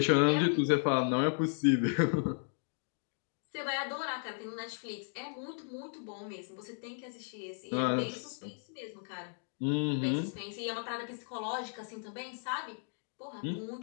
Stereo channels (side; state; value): right; silent; 54 dB below the other